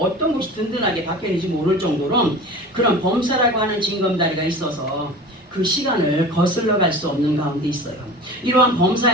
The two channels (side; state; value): both; normal; correlation 0.37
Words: 어떤 것이 든든하게 박혀있는지 모를 정도로 그런 범사라고 하는 징검다리가 있어서 그 시간을 거슬러 갈 수 없는 가운데 있어요. 이러한